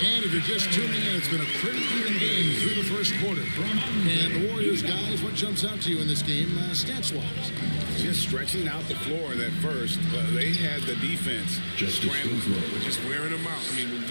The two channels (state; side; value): inverted; both; correlation -1.00